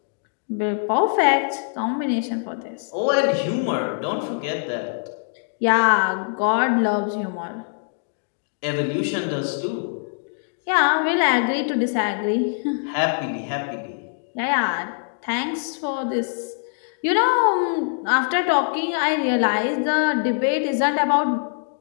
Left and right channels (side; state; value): right; silent; digital silence